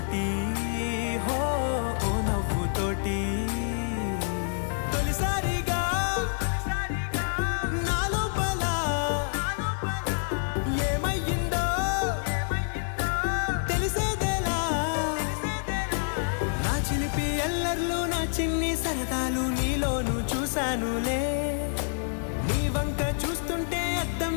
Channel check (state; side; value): silent; right; 60 dB below the other